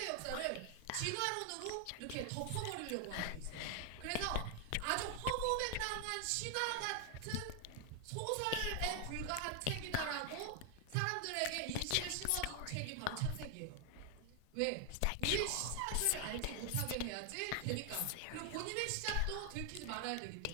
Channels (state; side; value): different; both; correlation 0.00